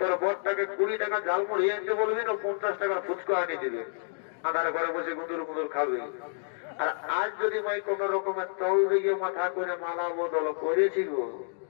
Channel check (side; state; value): right; silent; digital silence